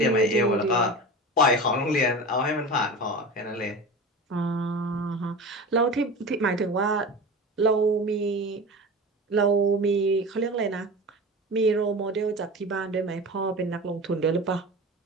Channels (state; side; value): normal; both; correlation 0.31